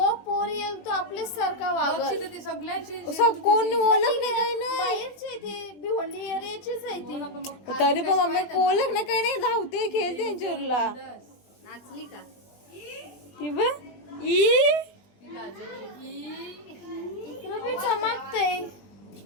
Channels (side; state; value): right; late; 20 ms